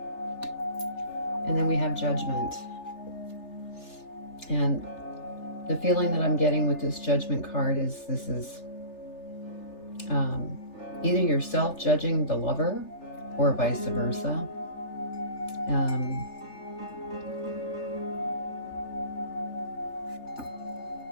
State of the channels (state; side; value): late; right; 3.4 ms